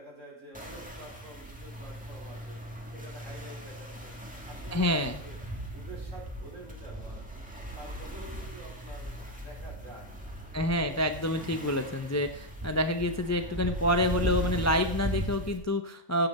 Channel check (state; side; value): normal; both; correlation 0.04